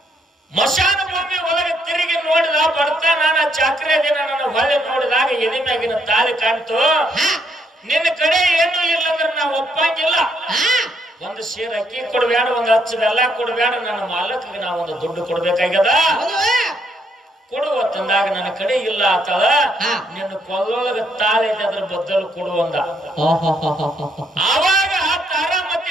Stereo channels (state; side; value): normal; both; correlation 0.73